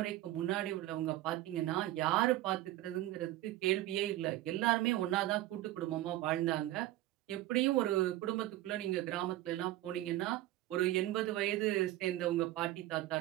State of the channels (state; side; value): quieter; left; 15.4 dB